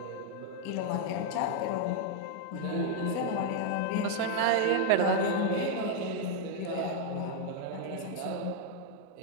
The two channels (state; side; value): different; both; correlation 0.00